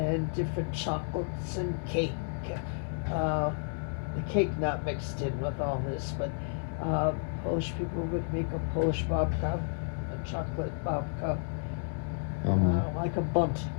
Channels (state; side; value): silent; right; digital silence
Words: different chocolates and cake. The cake not mixed in with all this, but Polish people would make a Polish babka, a chocolate babka, like a bundt